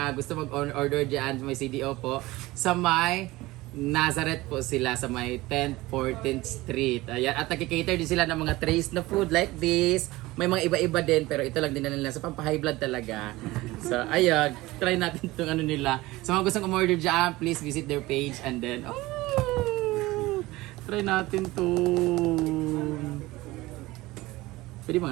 gusto mag-order dyan, may CDO po. Sa may Nazareth po sila sa may 10th, 14th Street. Ayan, at nag-cater din sila ng mga trays na food like this. May mga iba-iba din, pero ito lang din na nila. So, pampa-high blood talaga. So, ayan, try natin itong ano nila. Sa mga gustong umorder dyan, please visit their page and then, try natin to. Pwede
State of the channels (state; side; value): quieter; left; 19.4 dB